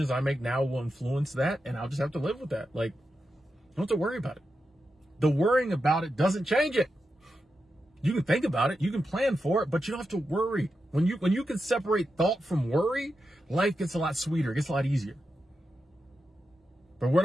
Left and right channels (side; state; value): both; normal; correlation 0.88